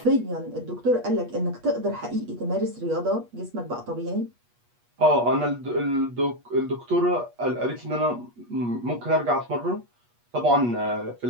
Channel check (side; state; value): left; late; 8.3 ms